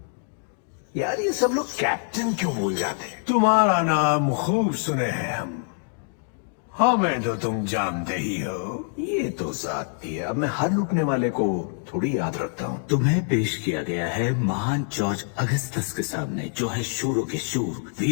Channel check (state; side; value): silent; right; 62 dB below the other